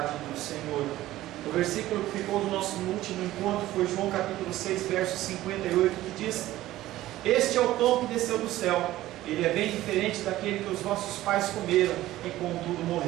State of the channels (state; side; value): quieter; left; 15.5 dB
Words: do Senhor. O versículo que ficou do nosso último encontro foi João capítulo 6, verso 58, que diz: este é o pão que desceu do céu. Ele é bem diferente daquele que os vossos pais comeram e contudo